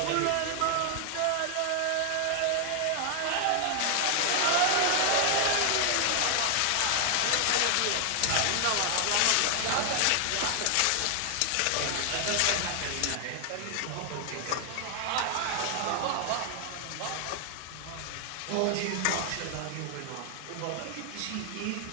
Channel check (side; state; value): both; different; correlation 0.00